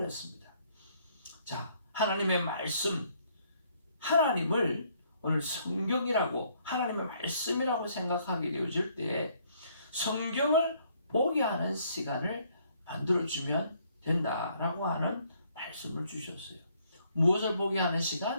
자, 하나님의 말씀, 하나님을 오늘 성경이라고 하나님의 말씀이라고 생각하게 되어질 때 성경을 보게 하는 시간을 만들어주면 된다라고 하는 말씀을 주셨어요. 무엇을 보게 하는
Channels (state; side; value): inverted; both; correlation -0.66